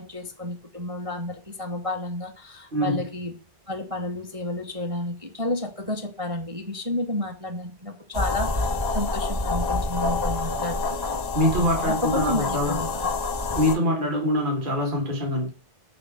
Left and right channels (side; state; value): left; late; 1.6 ms